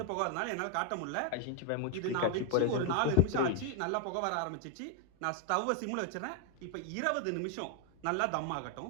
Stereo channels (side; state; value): both; different; correlation 0.01